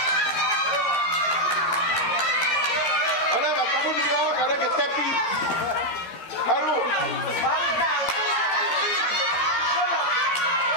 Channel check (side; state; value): right; late; 13 ms